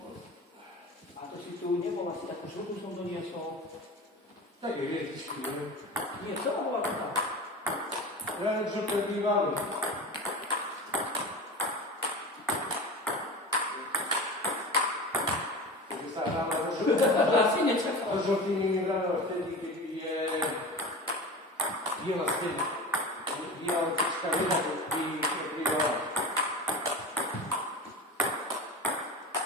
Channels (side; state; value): both; normal; correlation 0.30